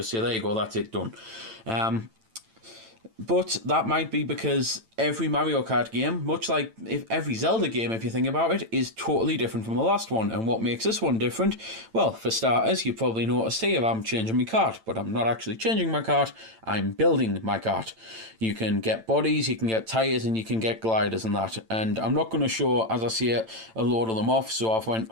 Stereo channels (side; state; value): left; late; 9.0 ms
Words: say, there you go, that's it, done. But that might be because every Mario Kart game, much like if every Zelda game, if you think about it, is totally different from the last one. And what makes this one different? Well, for starters, you probably noticed here I'm changing my kart, but I'm not actually changing my kart, I'm building my kart. You can get bodies, you can get tyres, and you can get gliders and that. And I'm not going to show, as I see it, a load of them off, so I've went